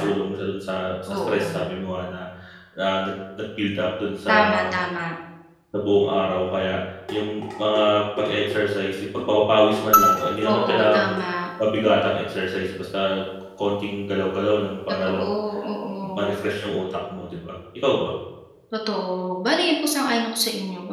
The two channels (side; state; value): both; identical; correlation 1.00